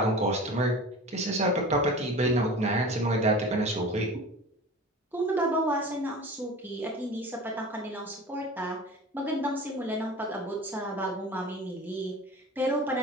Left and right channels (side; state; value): both; normal; correlation 0.37